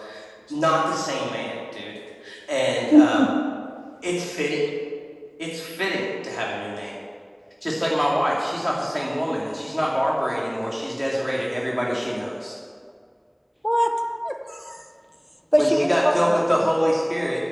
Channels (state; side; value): identical; both; correlation 1.00